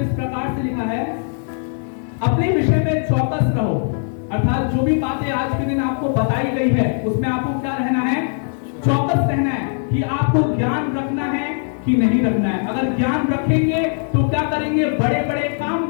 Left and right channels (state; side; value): silent; right; 60 dB below the other